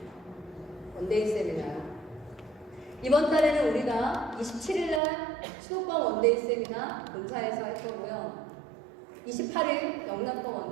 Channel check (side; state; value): left; drops out; at 5.0 s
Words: 원데이 세미나. 이번 달에는 우리가 27일날 수도권 원데이 세미나 본사에서 할 거고요. 28일 영남권